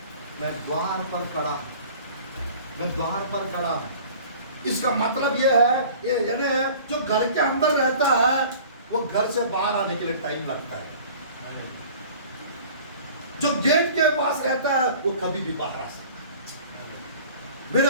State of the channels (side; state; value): both; inverted; correlation -0.45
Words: मैं द्वार पर खड़ा, मैं द्वार पर खड़ा हूं। इसका मतलब यह है, यानी जो घर के अंदर रहता है वो घर से बाहर आने के लिए टाइम लगता है। जो गेट के पास रहता है वो कभी भी बाहर आ सकता है। मेरे